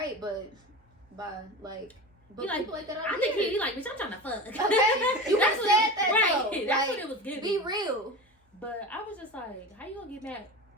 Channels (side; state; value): both; normal; correlation 0.29